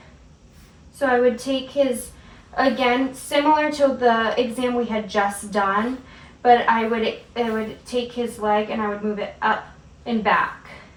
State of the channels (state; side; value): identical; both; correlation 1.00